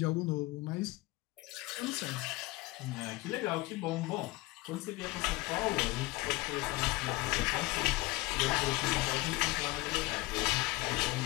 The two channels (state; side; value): quieter; right; 20.9 dB